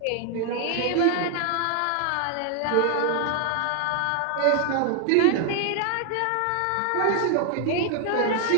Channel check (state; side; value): different; both; correlation 0.00